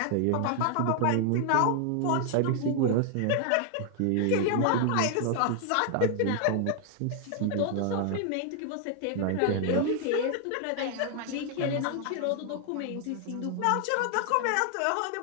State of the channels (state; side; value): different; both; correlation 0.00